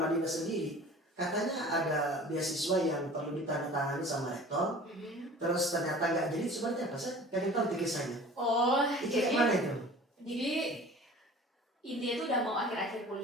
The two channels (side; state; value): both; normal; correlation 0.43